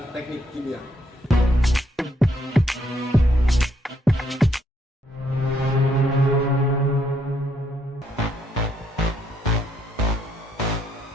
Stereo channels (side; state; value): both; normal; correlation 0.72